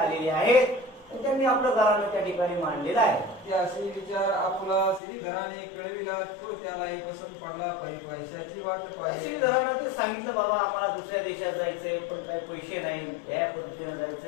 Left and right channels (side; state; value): right; drops out; at 5.0 s